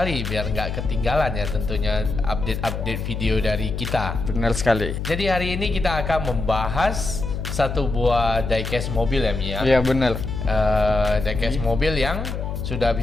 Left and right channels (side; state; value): left; noise; hum, 4 dB below the sound